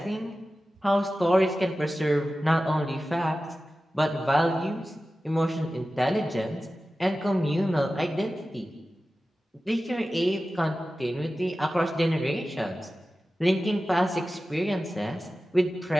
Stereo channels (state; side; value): normal; both; correlation 0.95